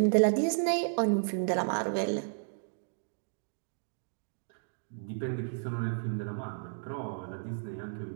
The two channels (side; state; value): left; silent; digital silence